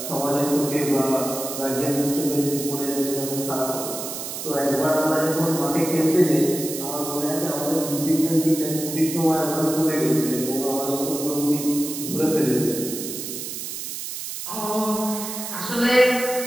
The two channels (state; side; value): noise; right; hiss, 7 dB below the sound